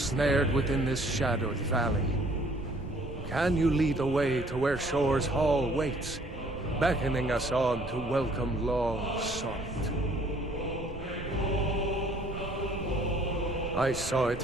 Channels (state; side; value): noise; right; rumble, 12 dB below the sound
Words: within this shadowed valley. Can you lead the way to where Shore's Hall waits, beckoning us on to welcome long sought? I saw it